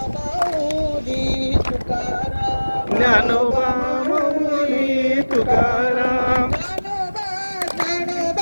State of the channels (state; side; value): inverted; both; correlation -1.00